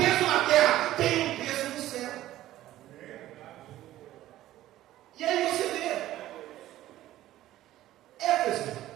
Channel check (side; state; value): left; quieter; 14.4 dB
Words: na terra, tem um peso no céu. E aí você vê Éfeso